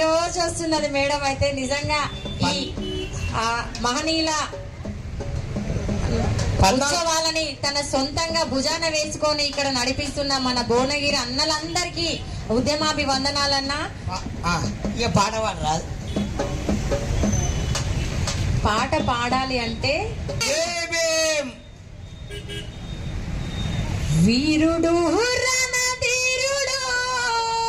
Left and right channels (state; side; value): identical; both; correlation 1.00